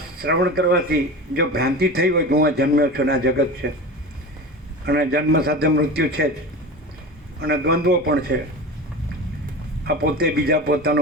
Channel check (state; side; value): normal; both; correlation 0.30